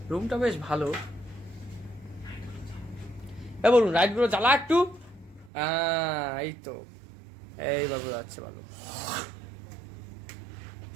রুমটা বেশ ভালো। বলুন রাইট গুলো জ্বালা একটু। এই তো এই বাবু যাচ্ছে ভালো।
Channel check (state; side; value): drops out; left; at 5.5 s